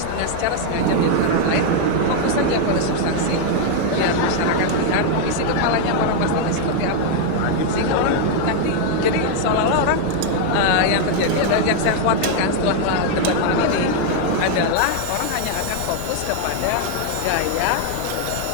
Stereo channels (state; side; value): different; both; correlation 0.00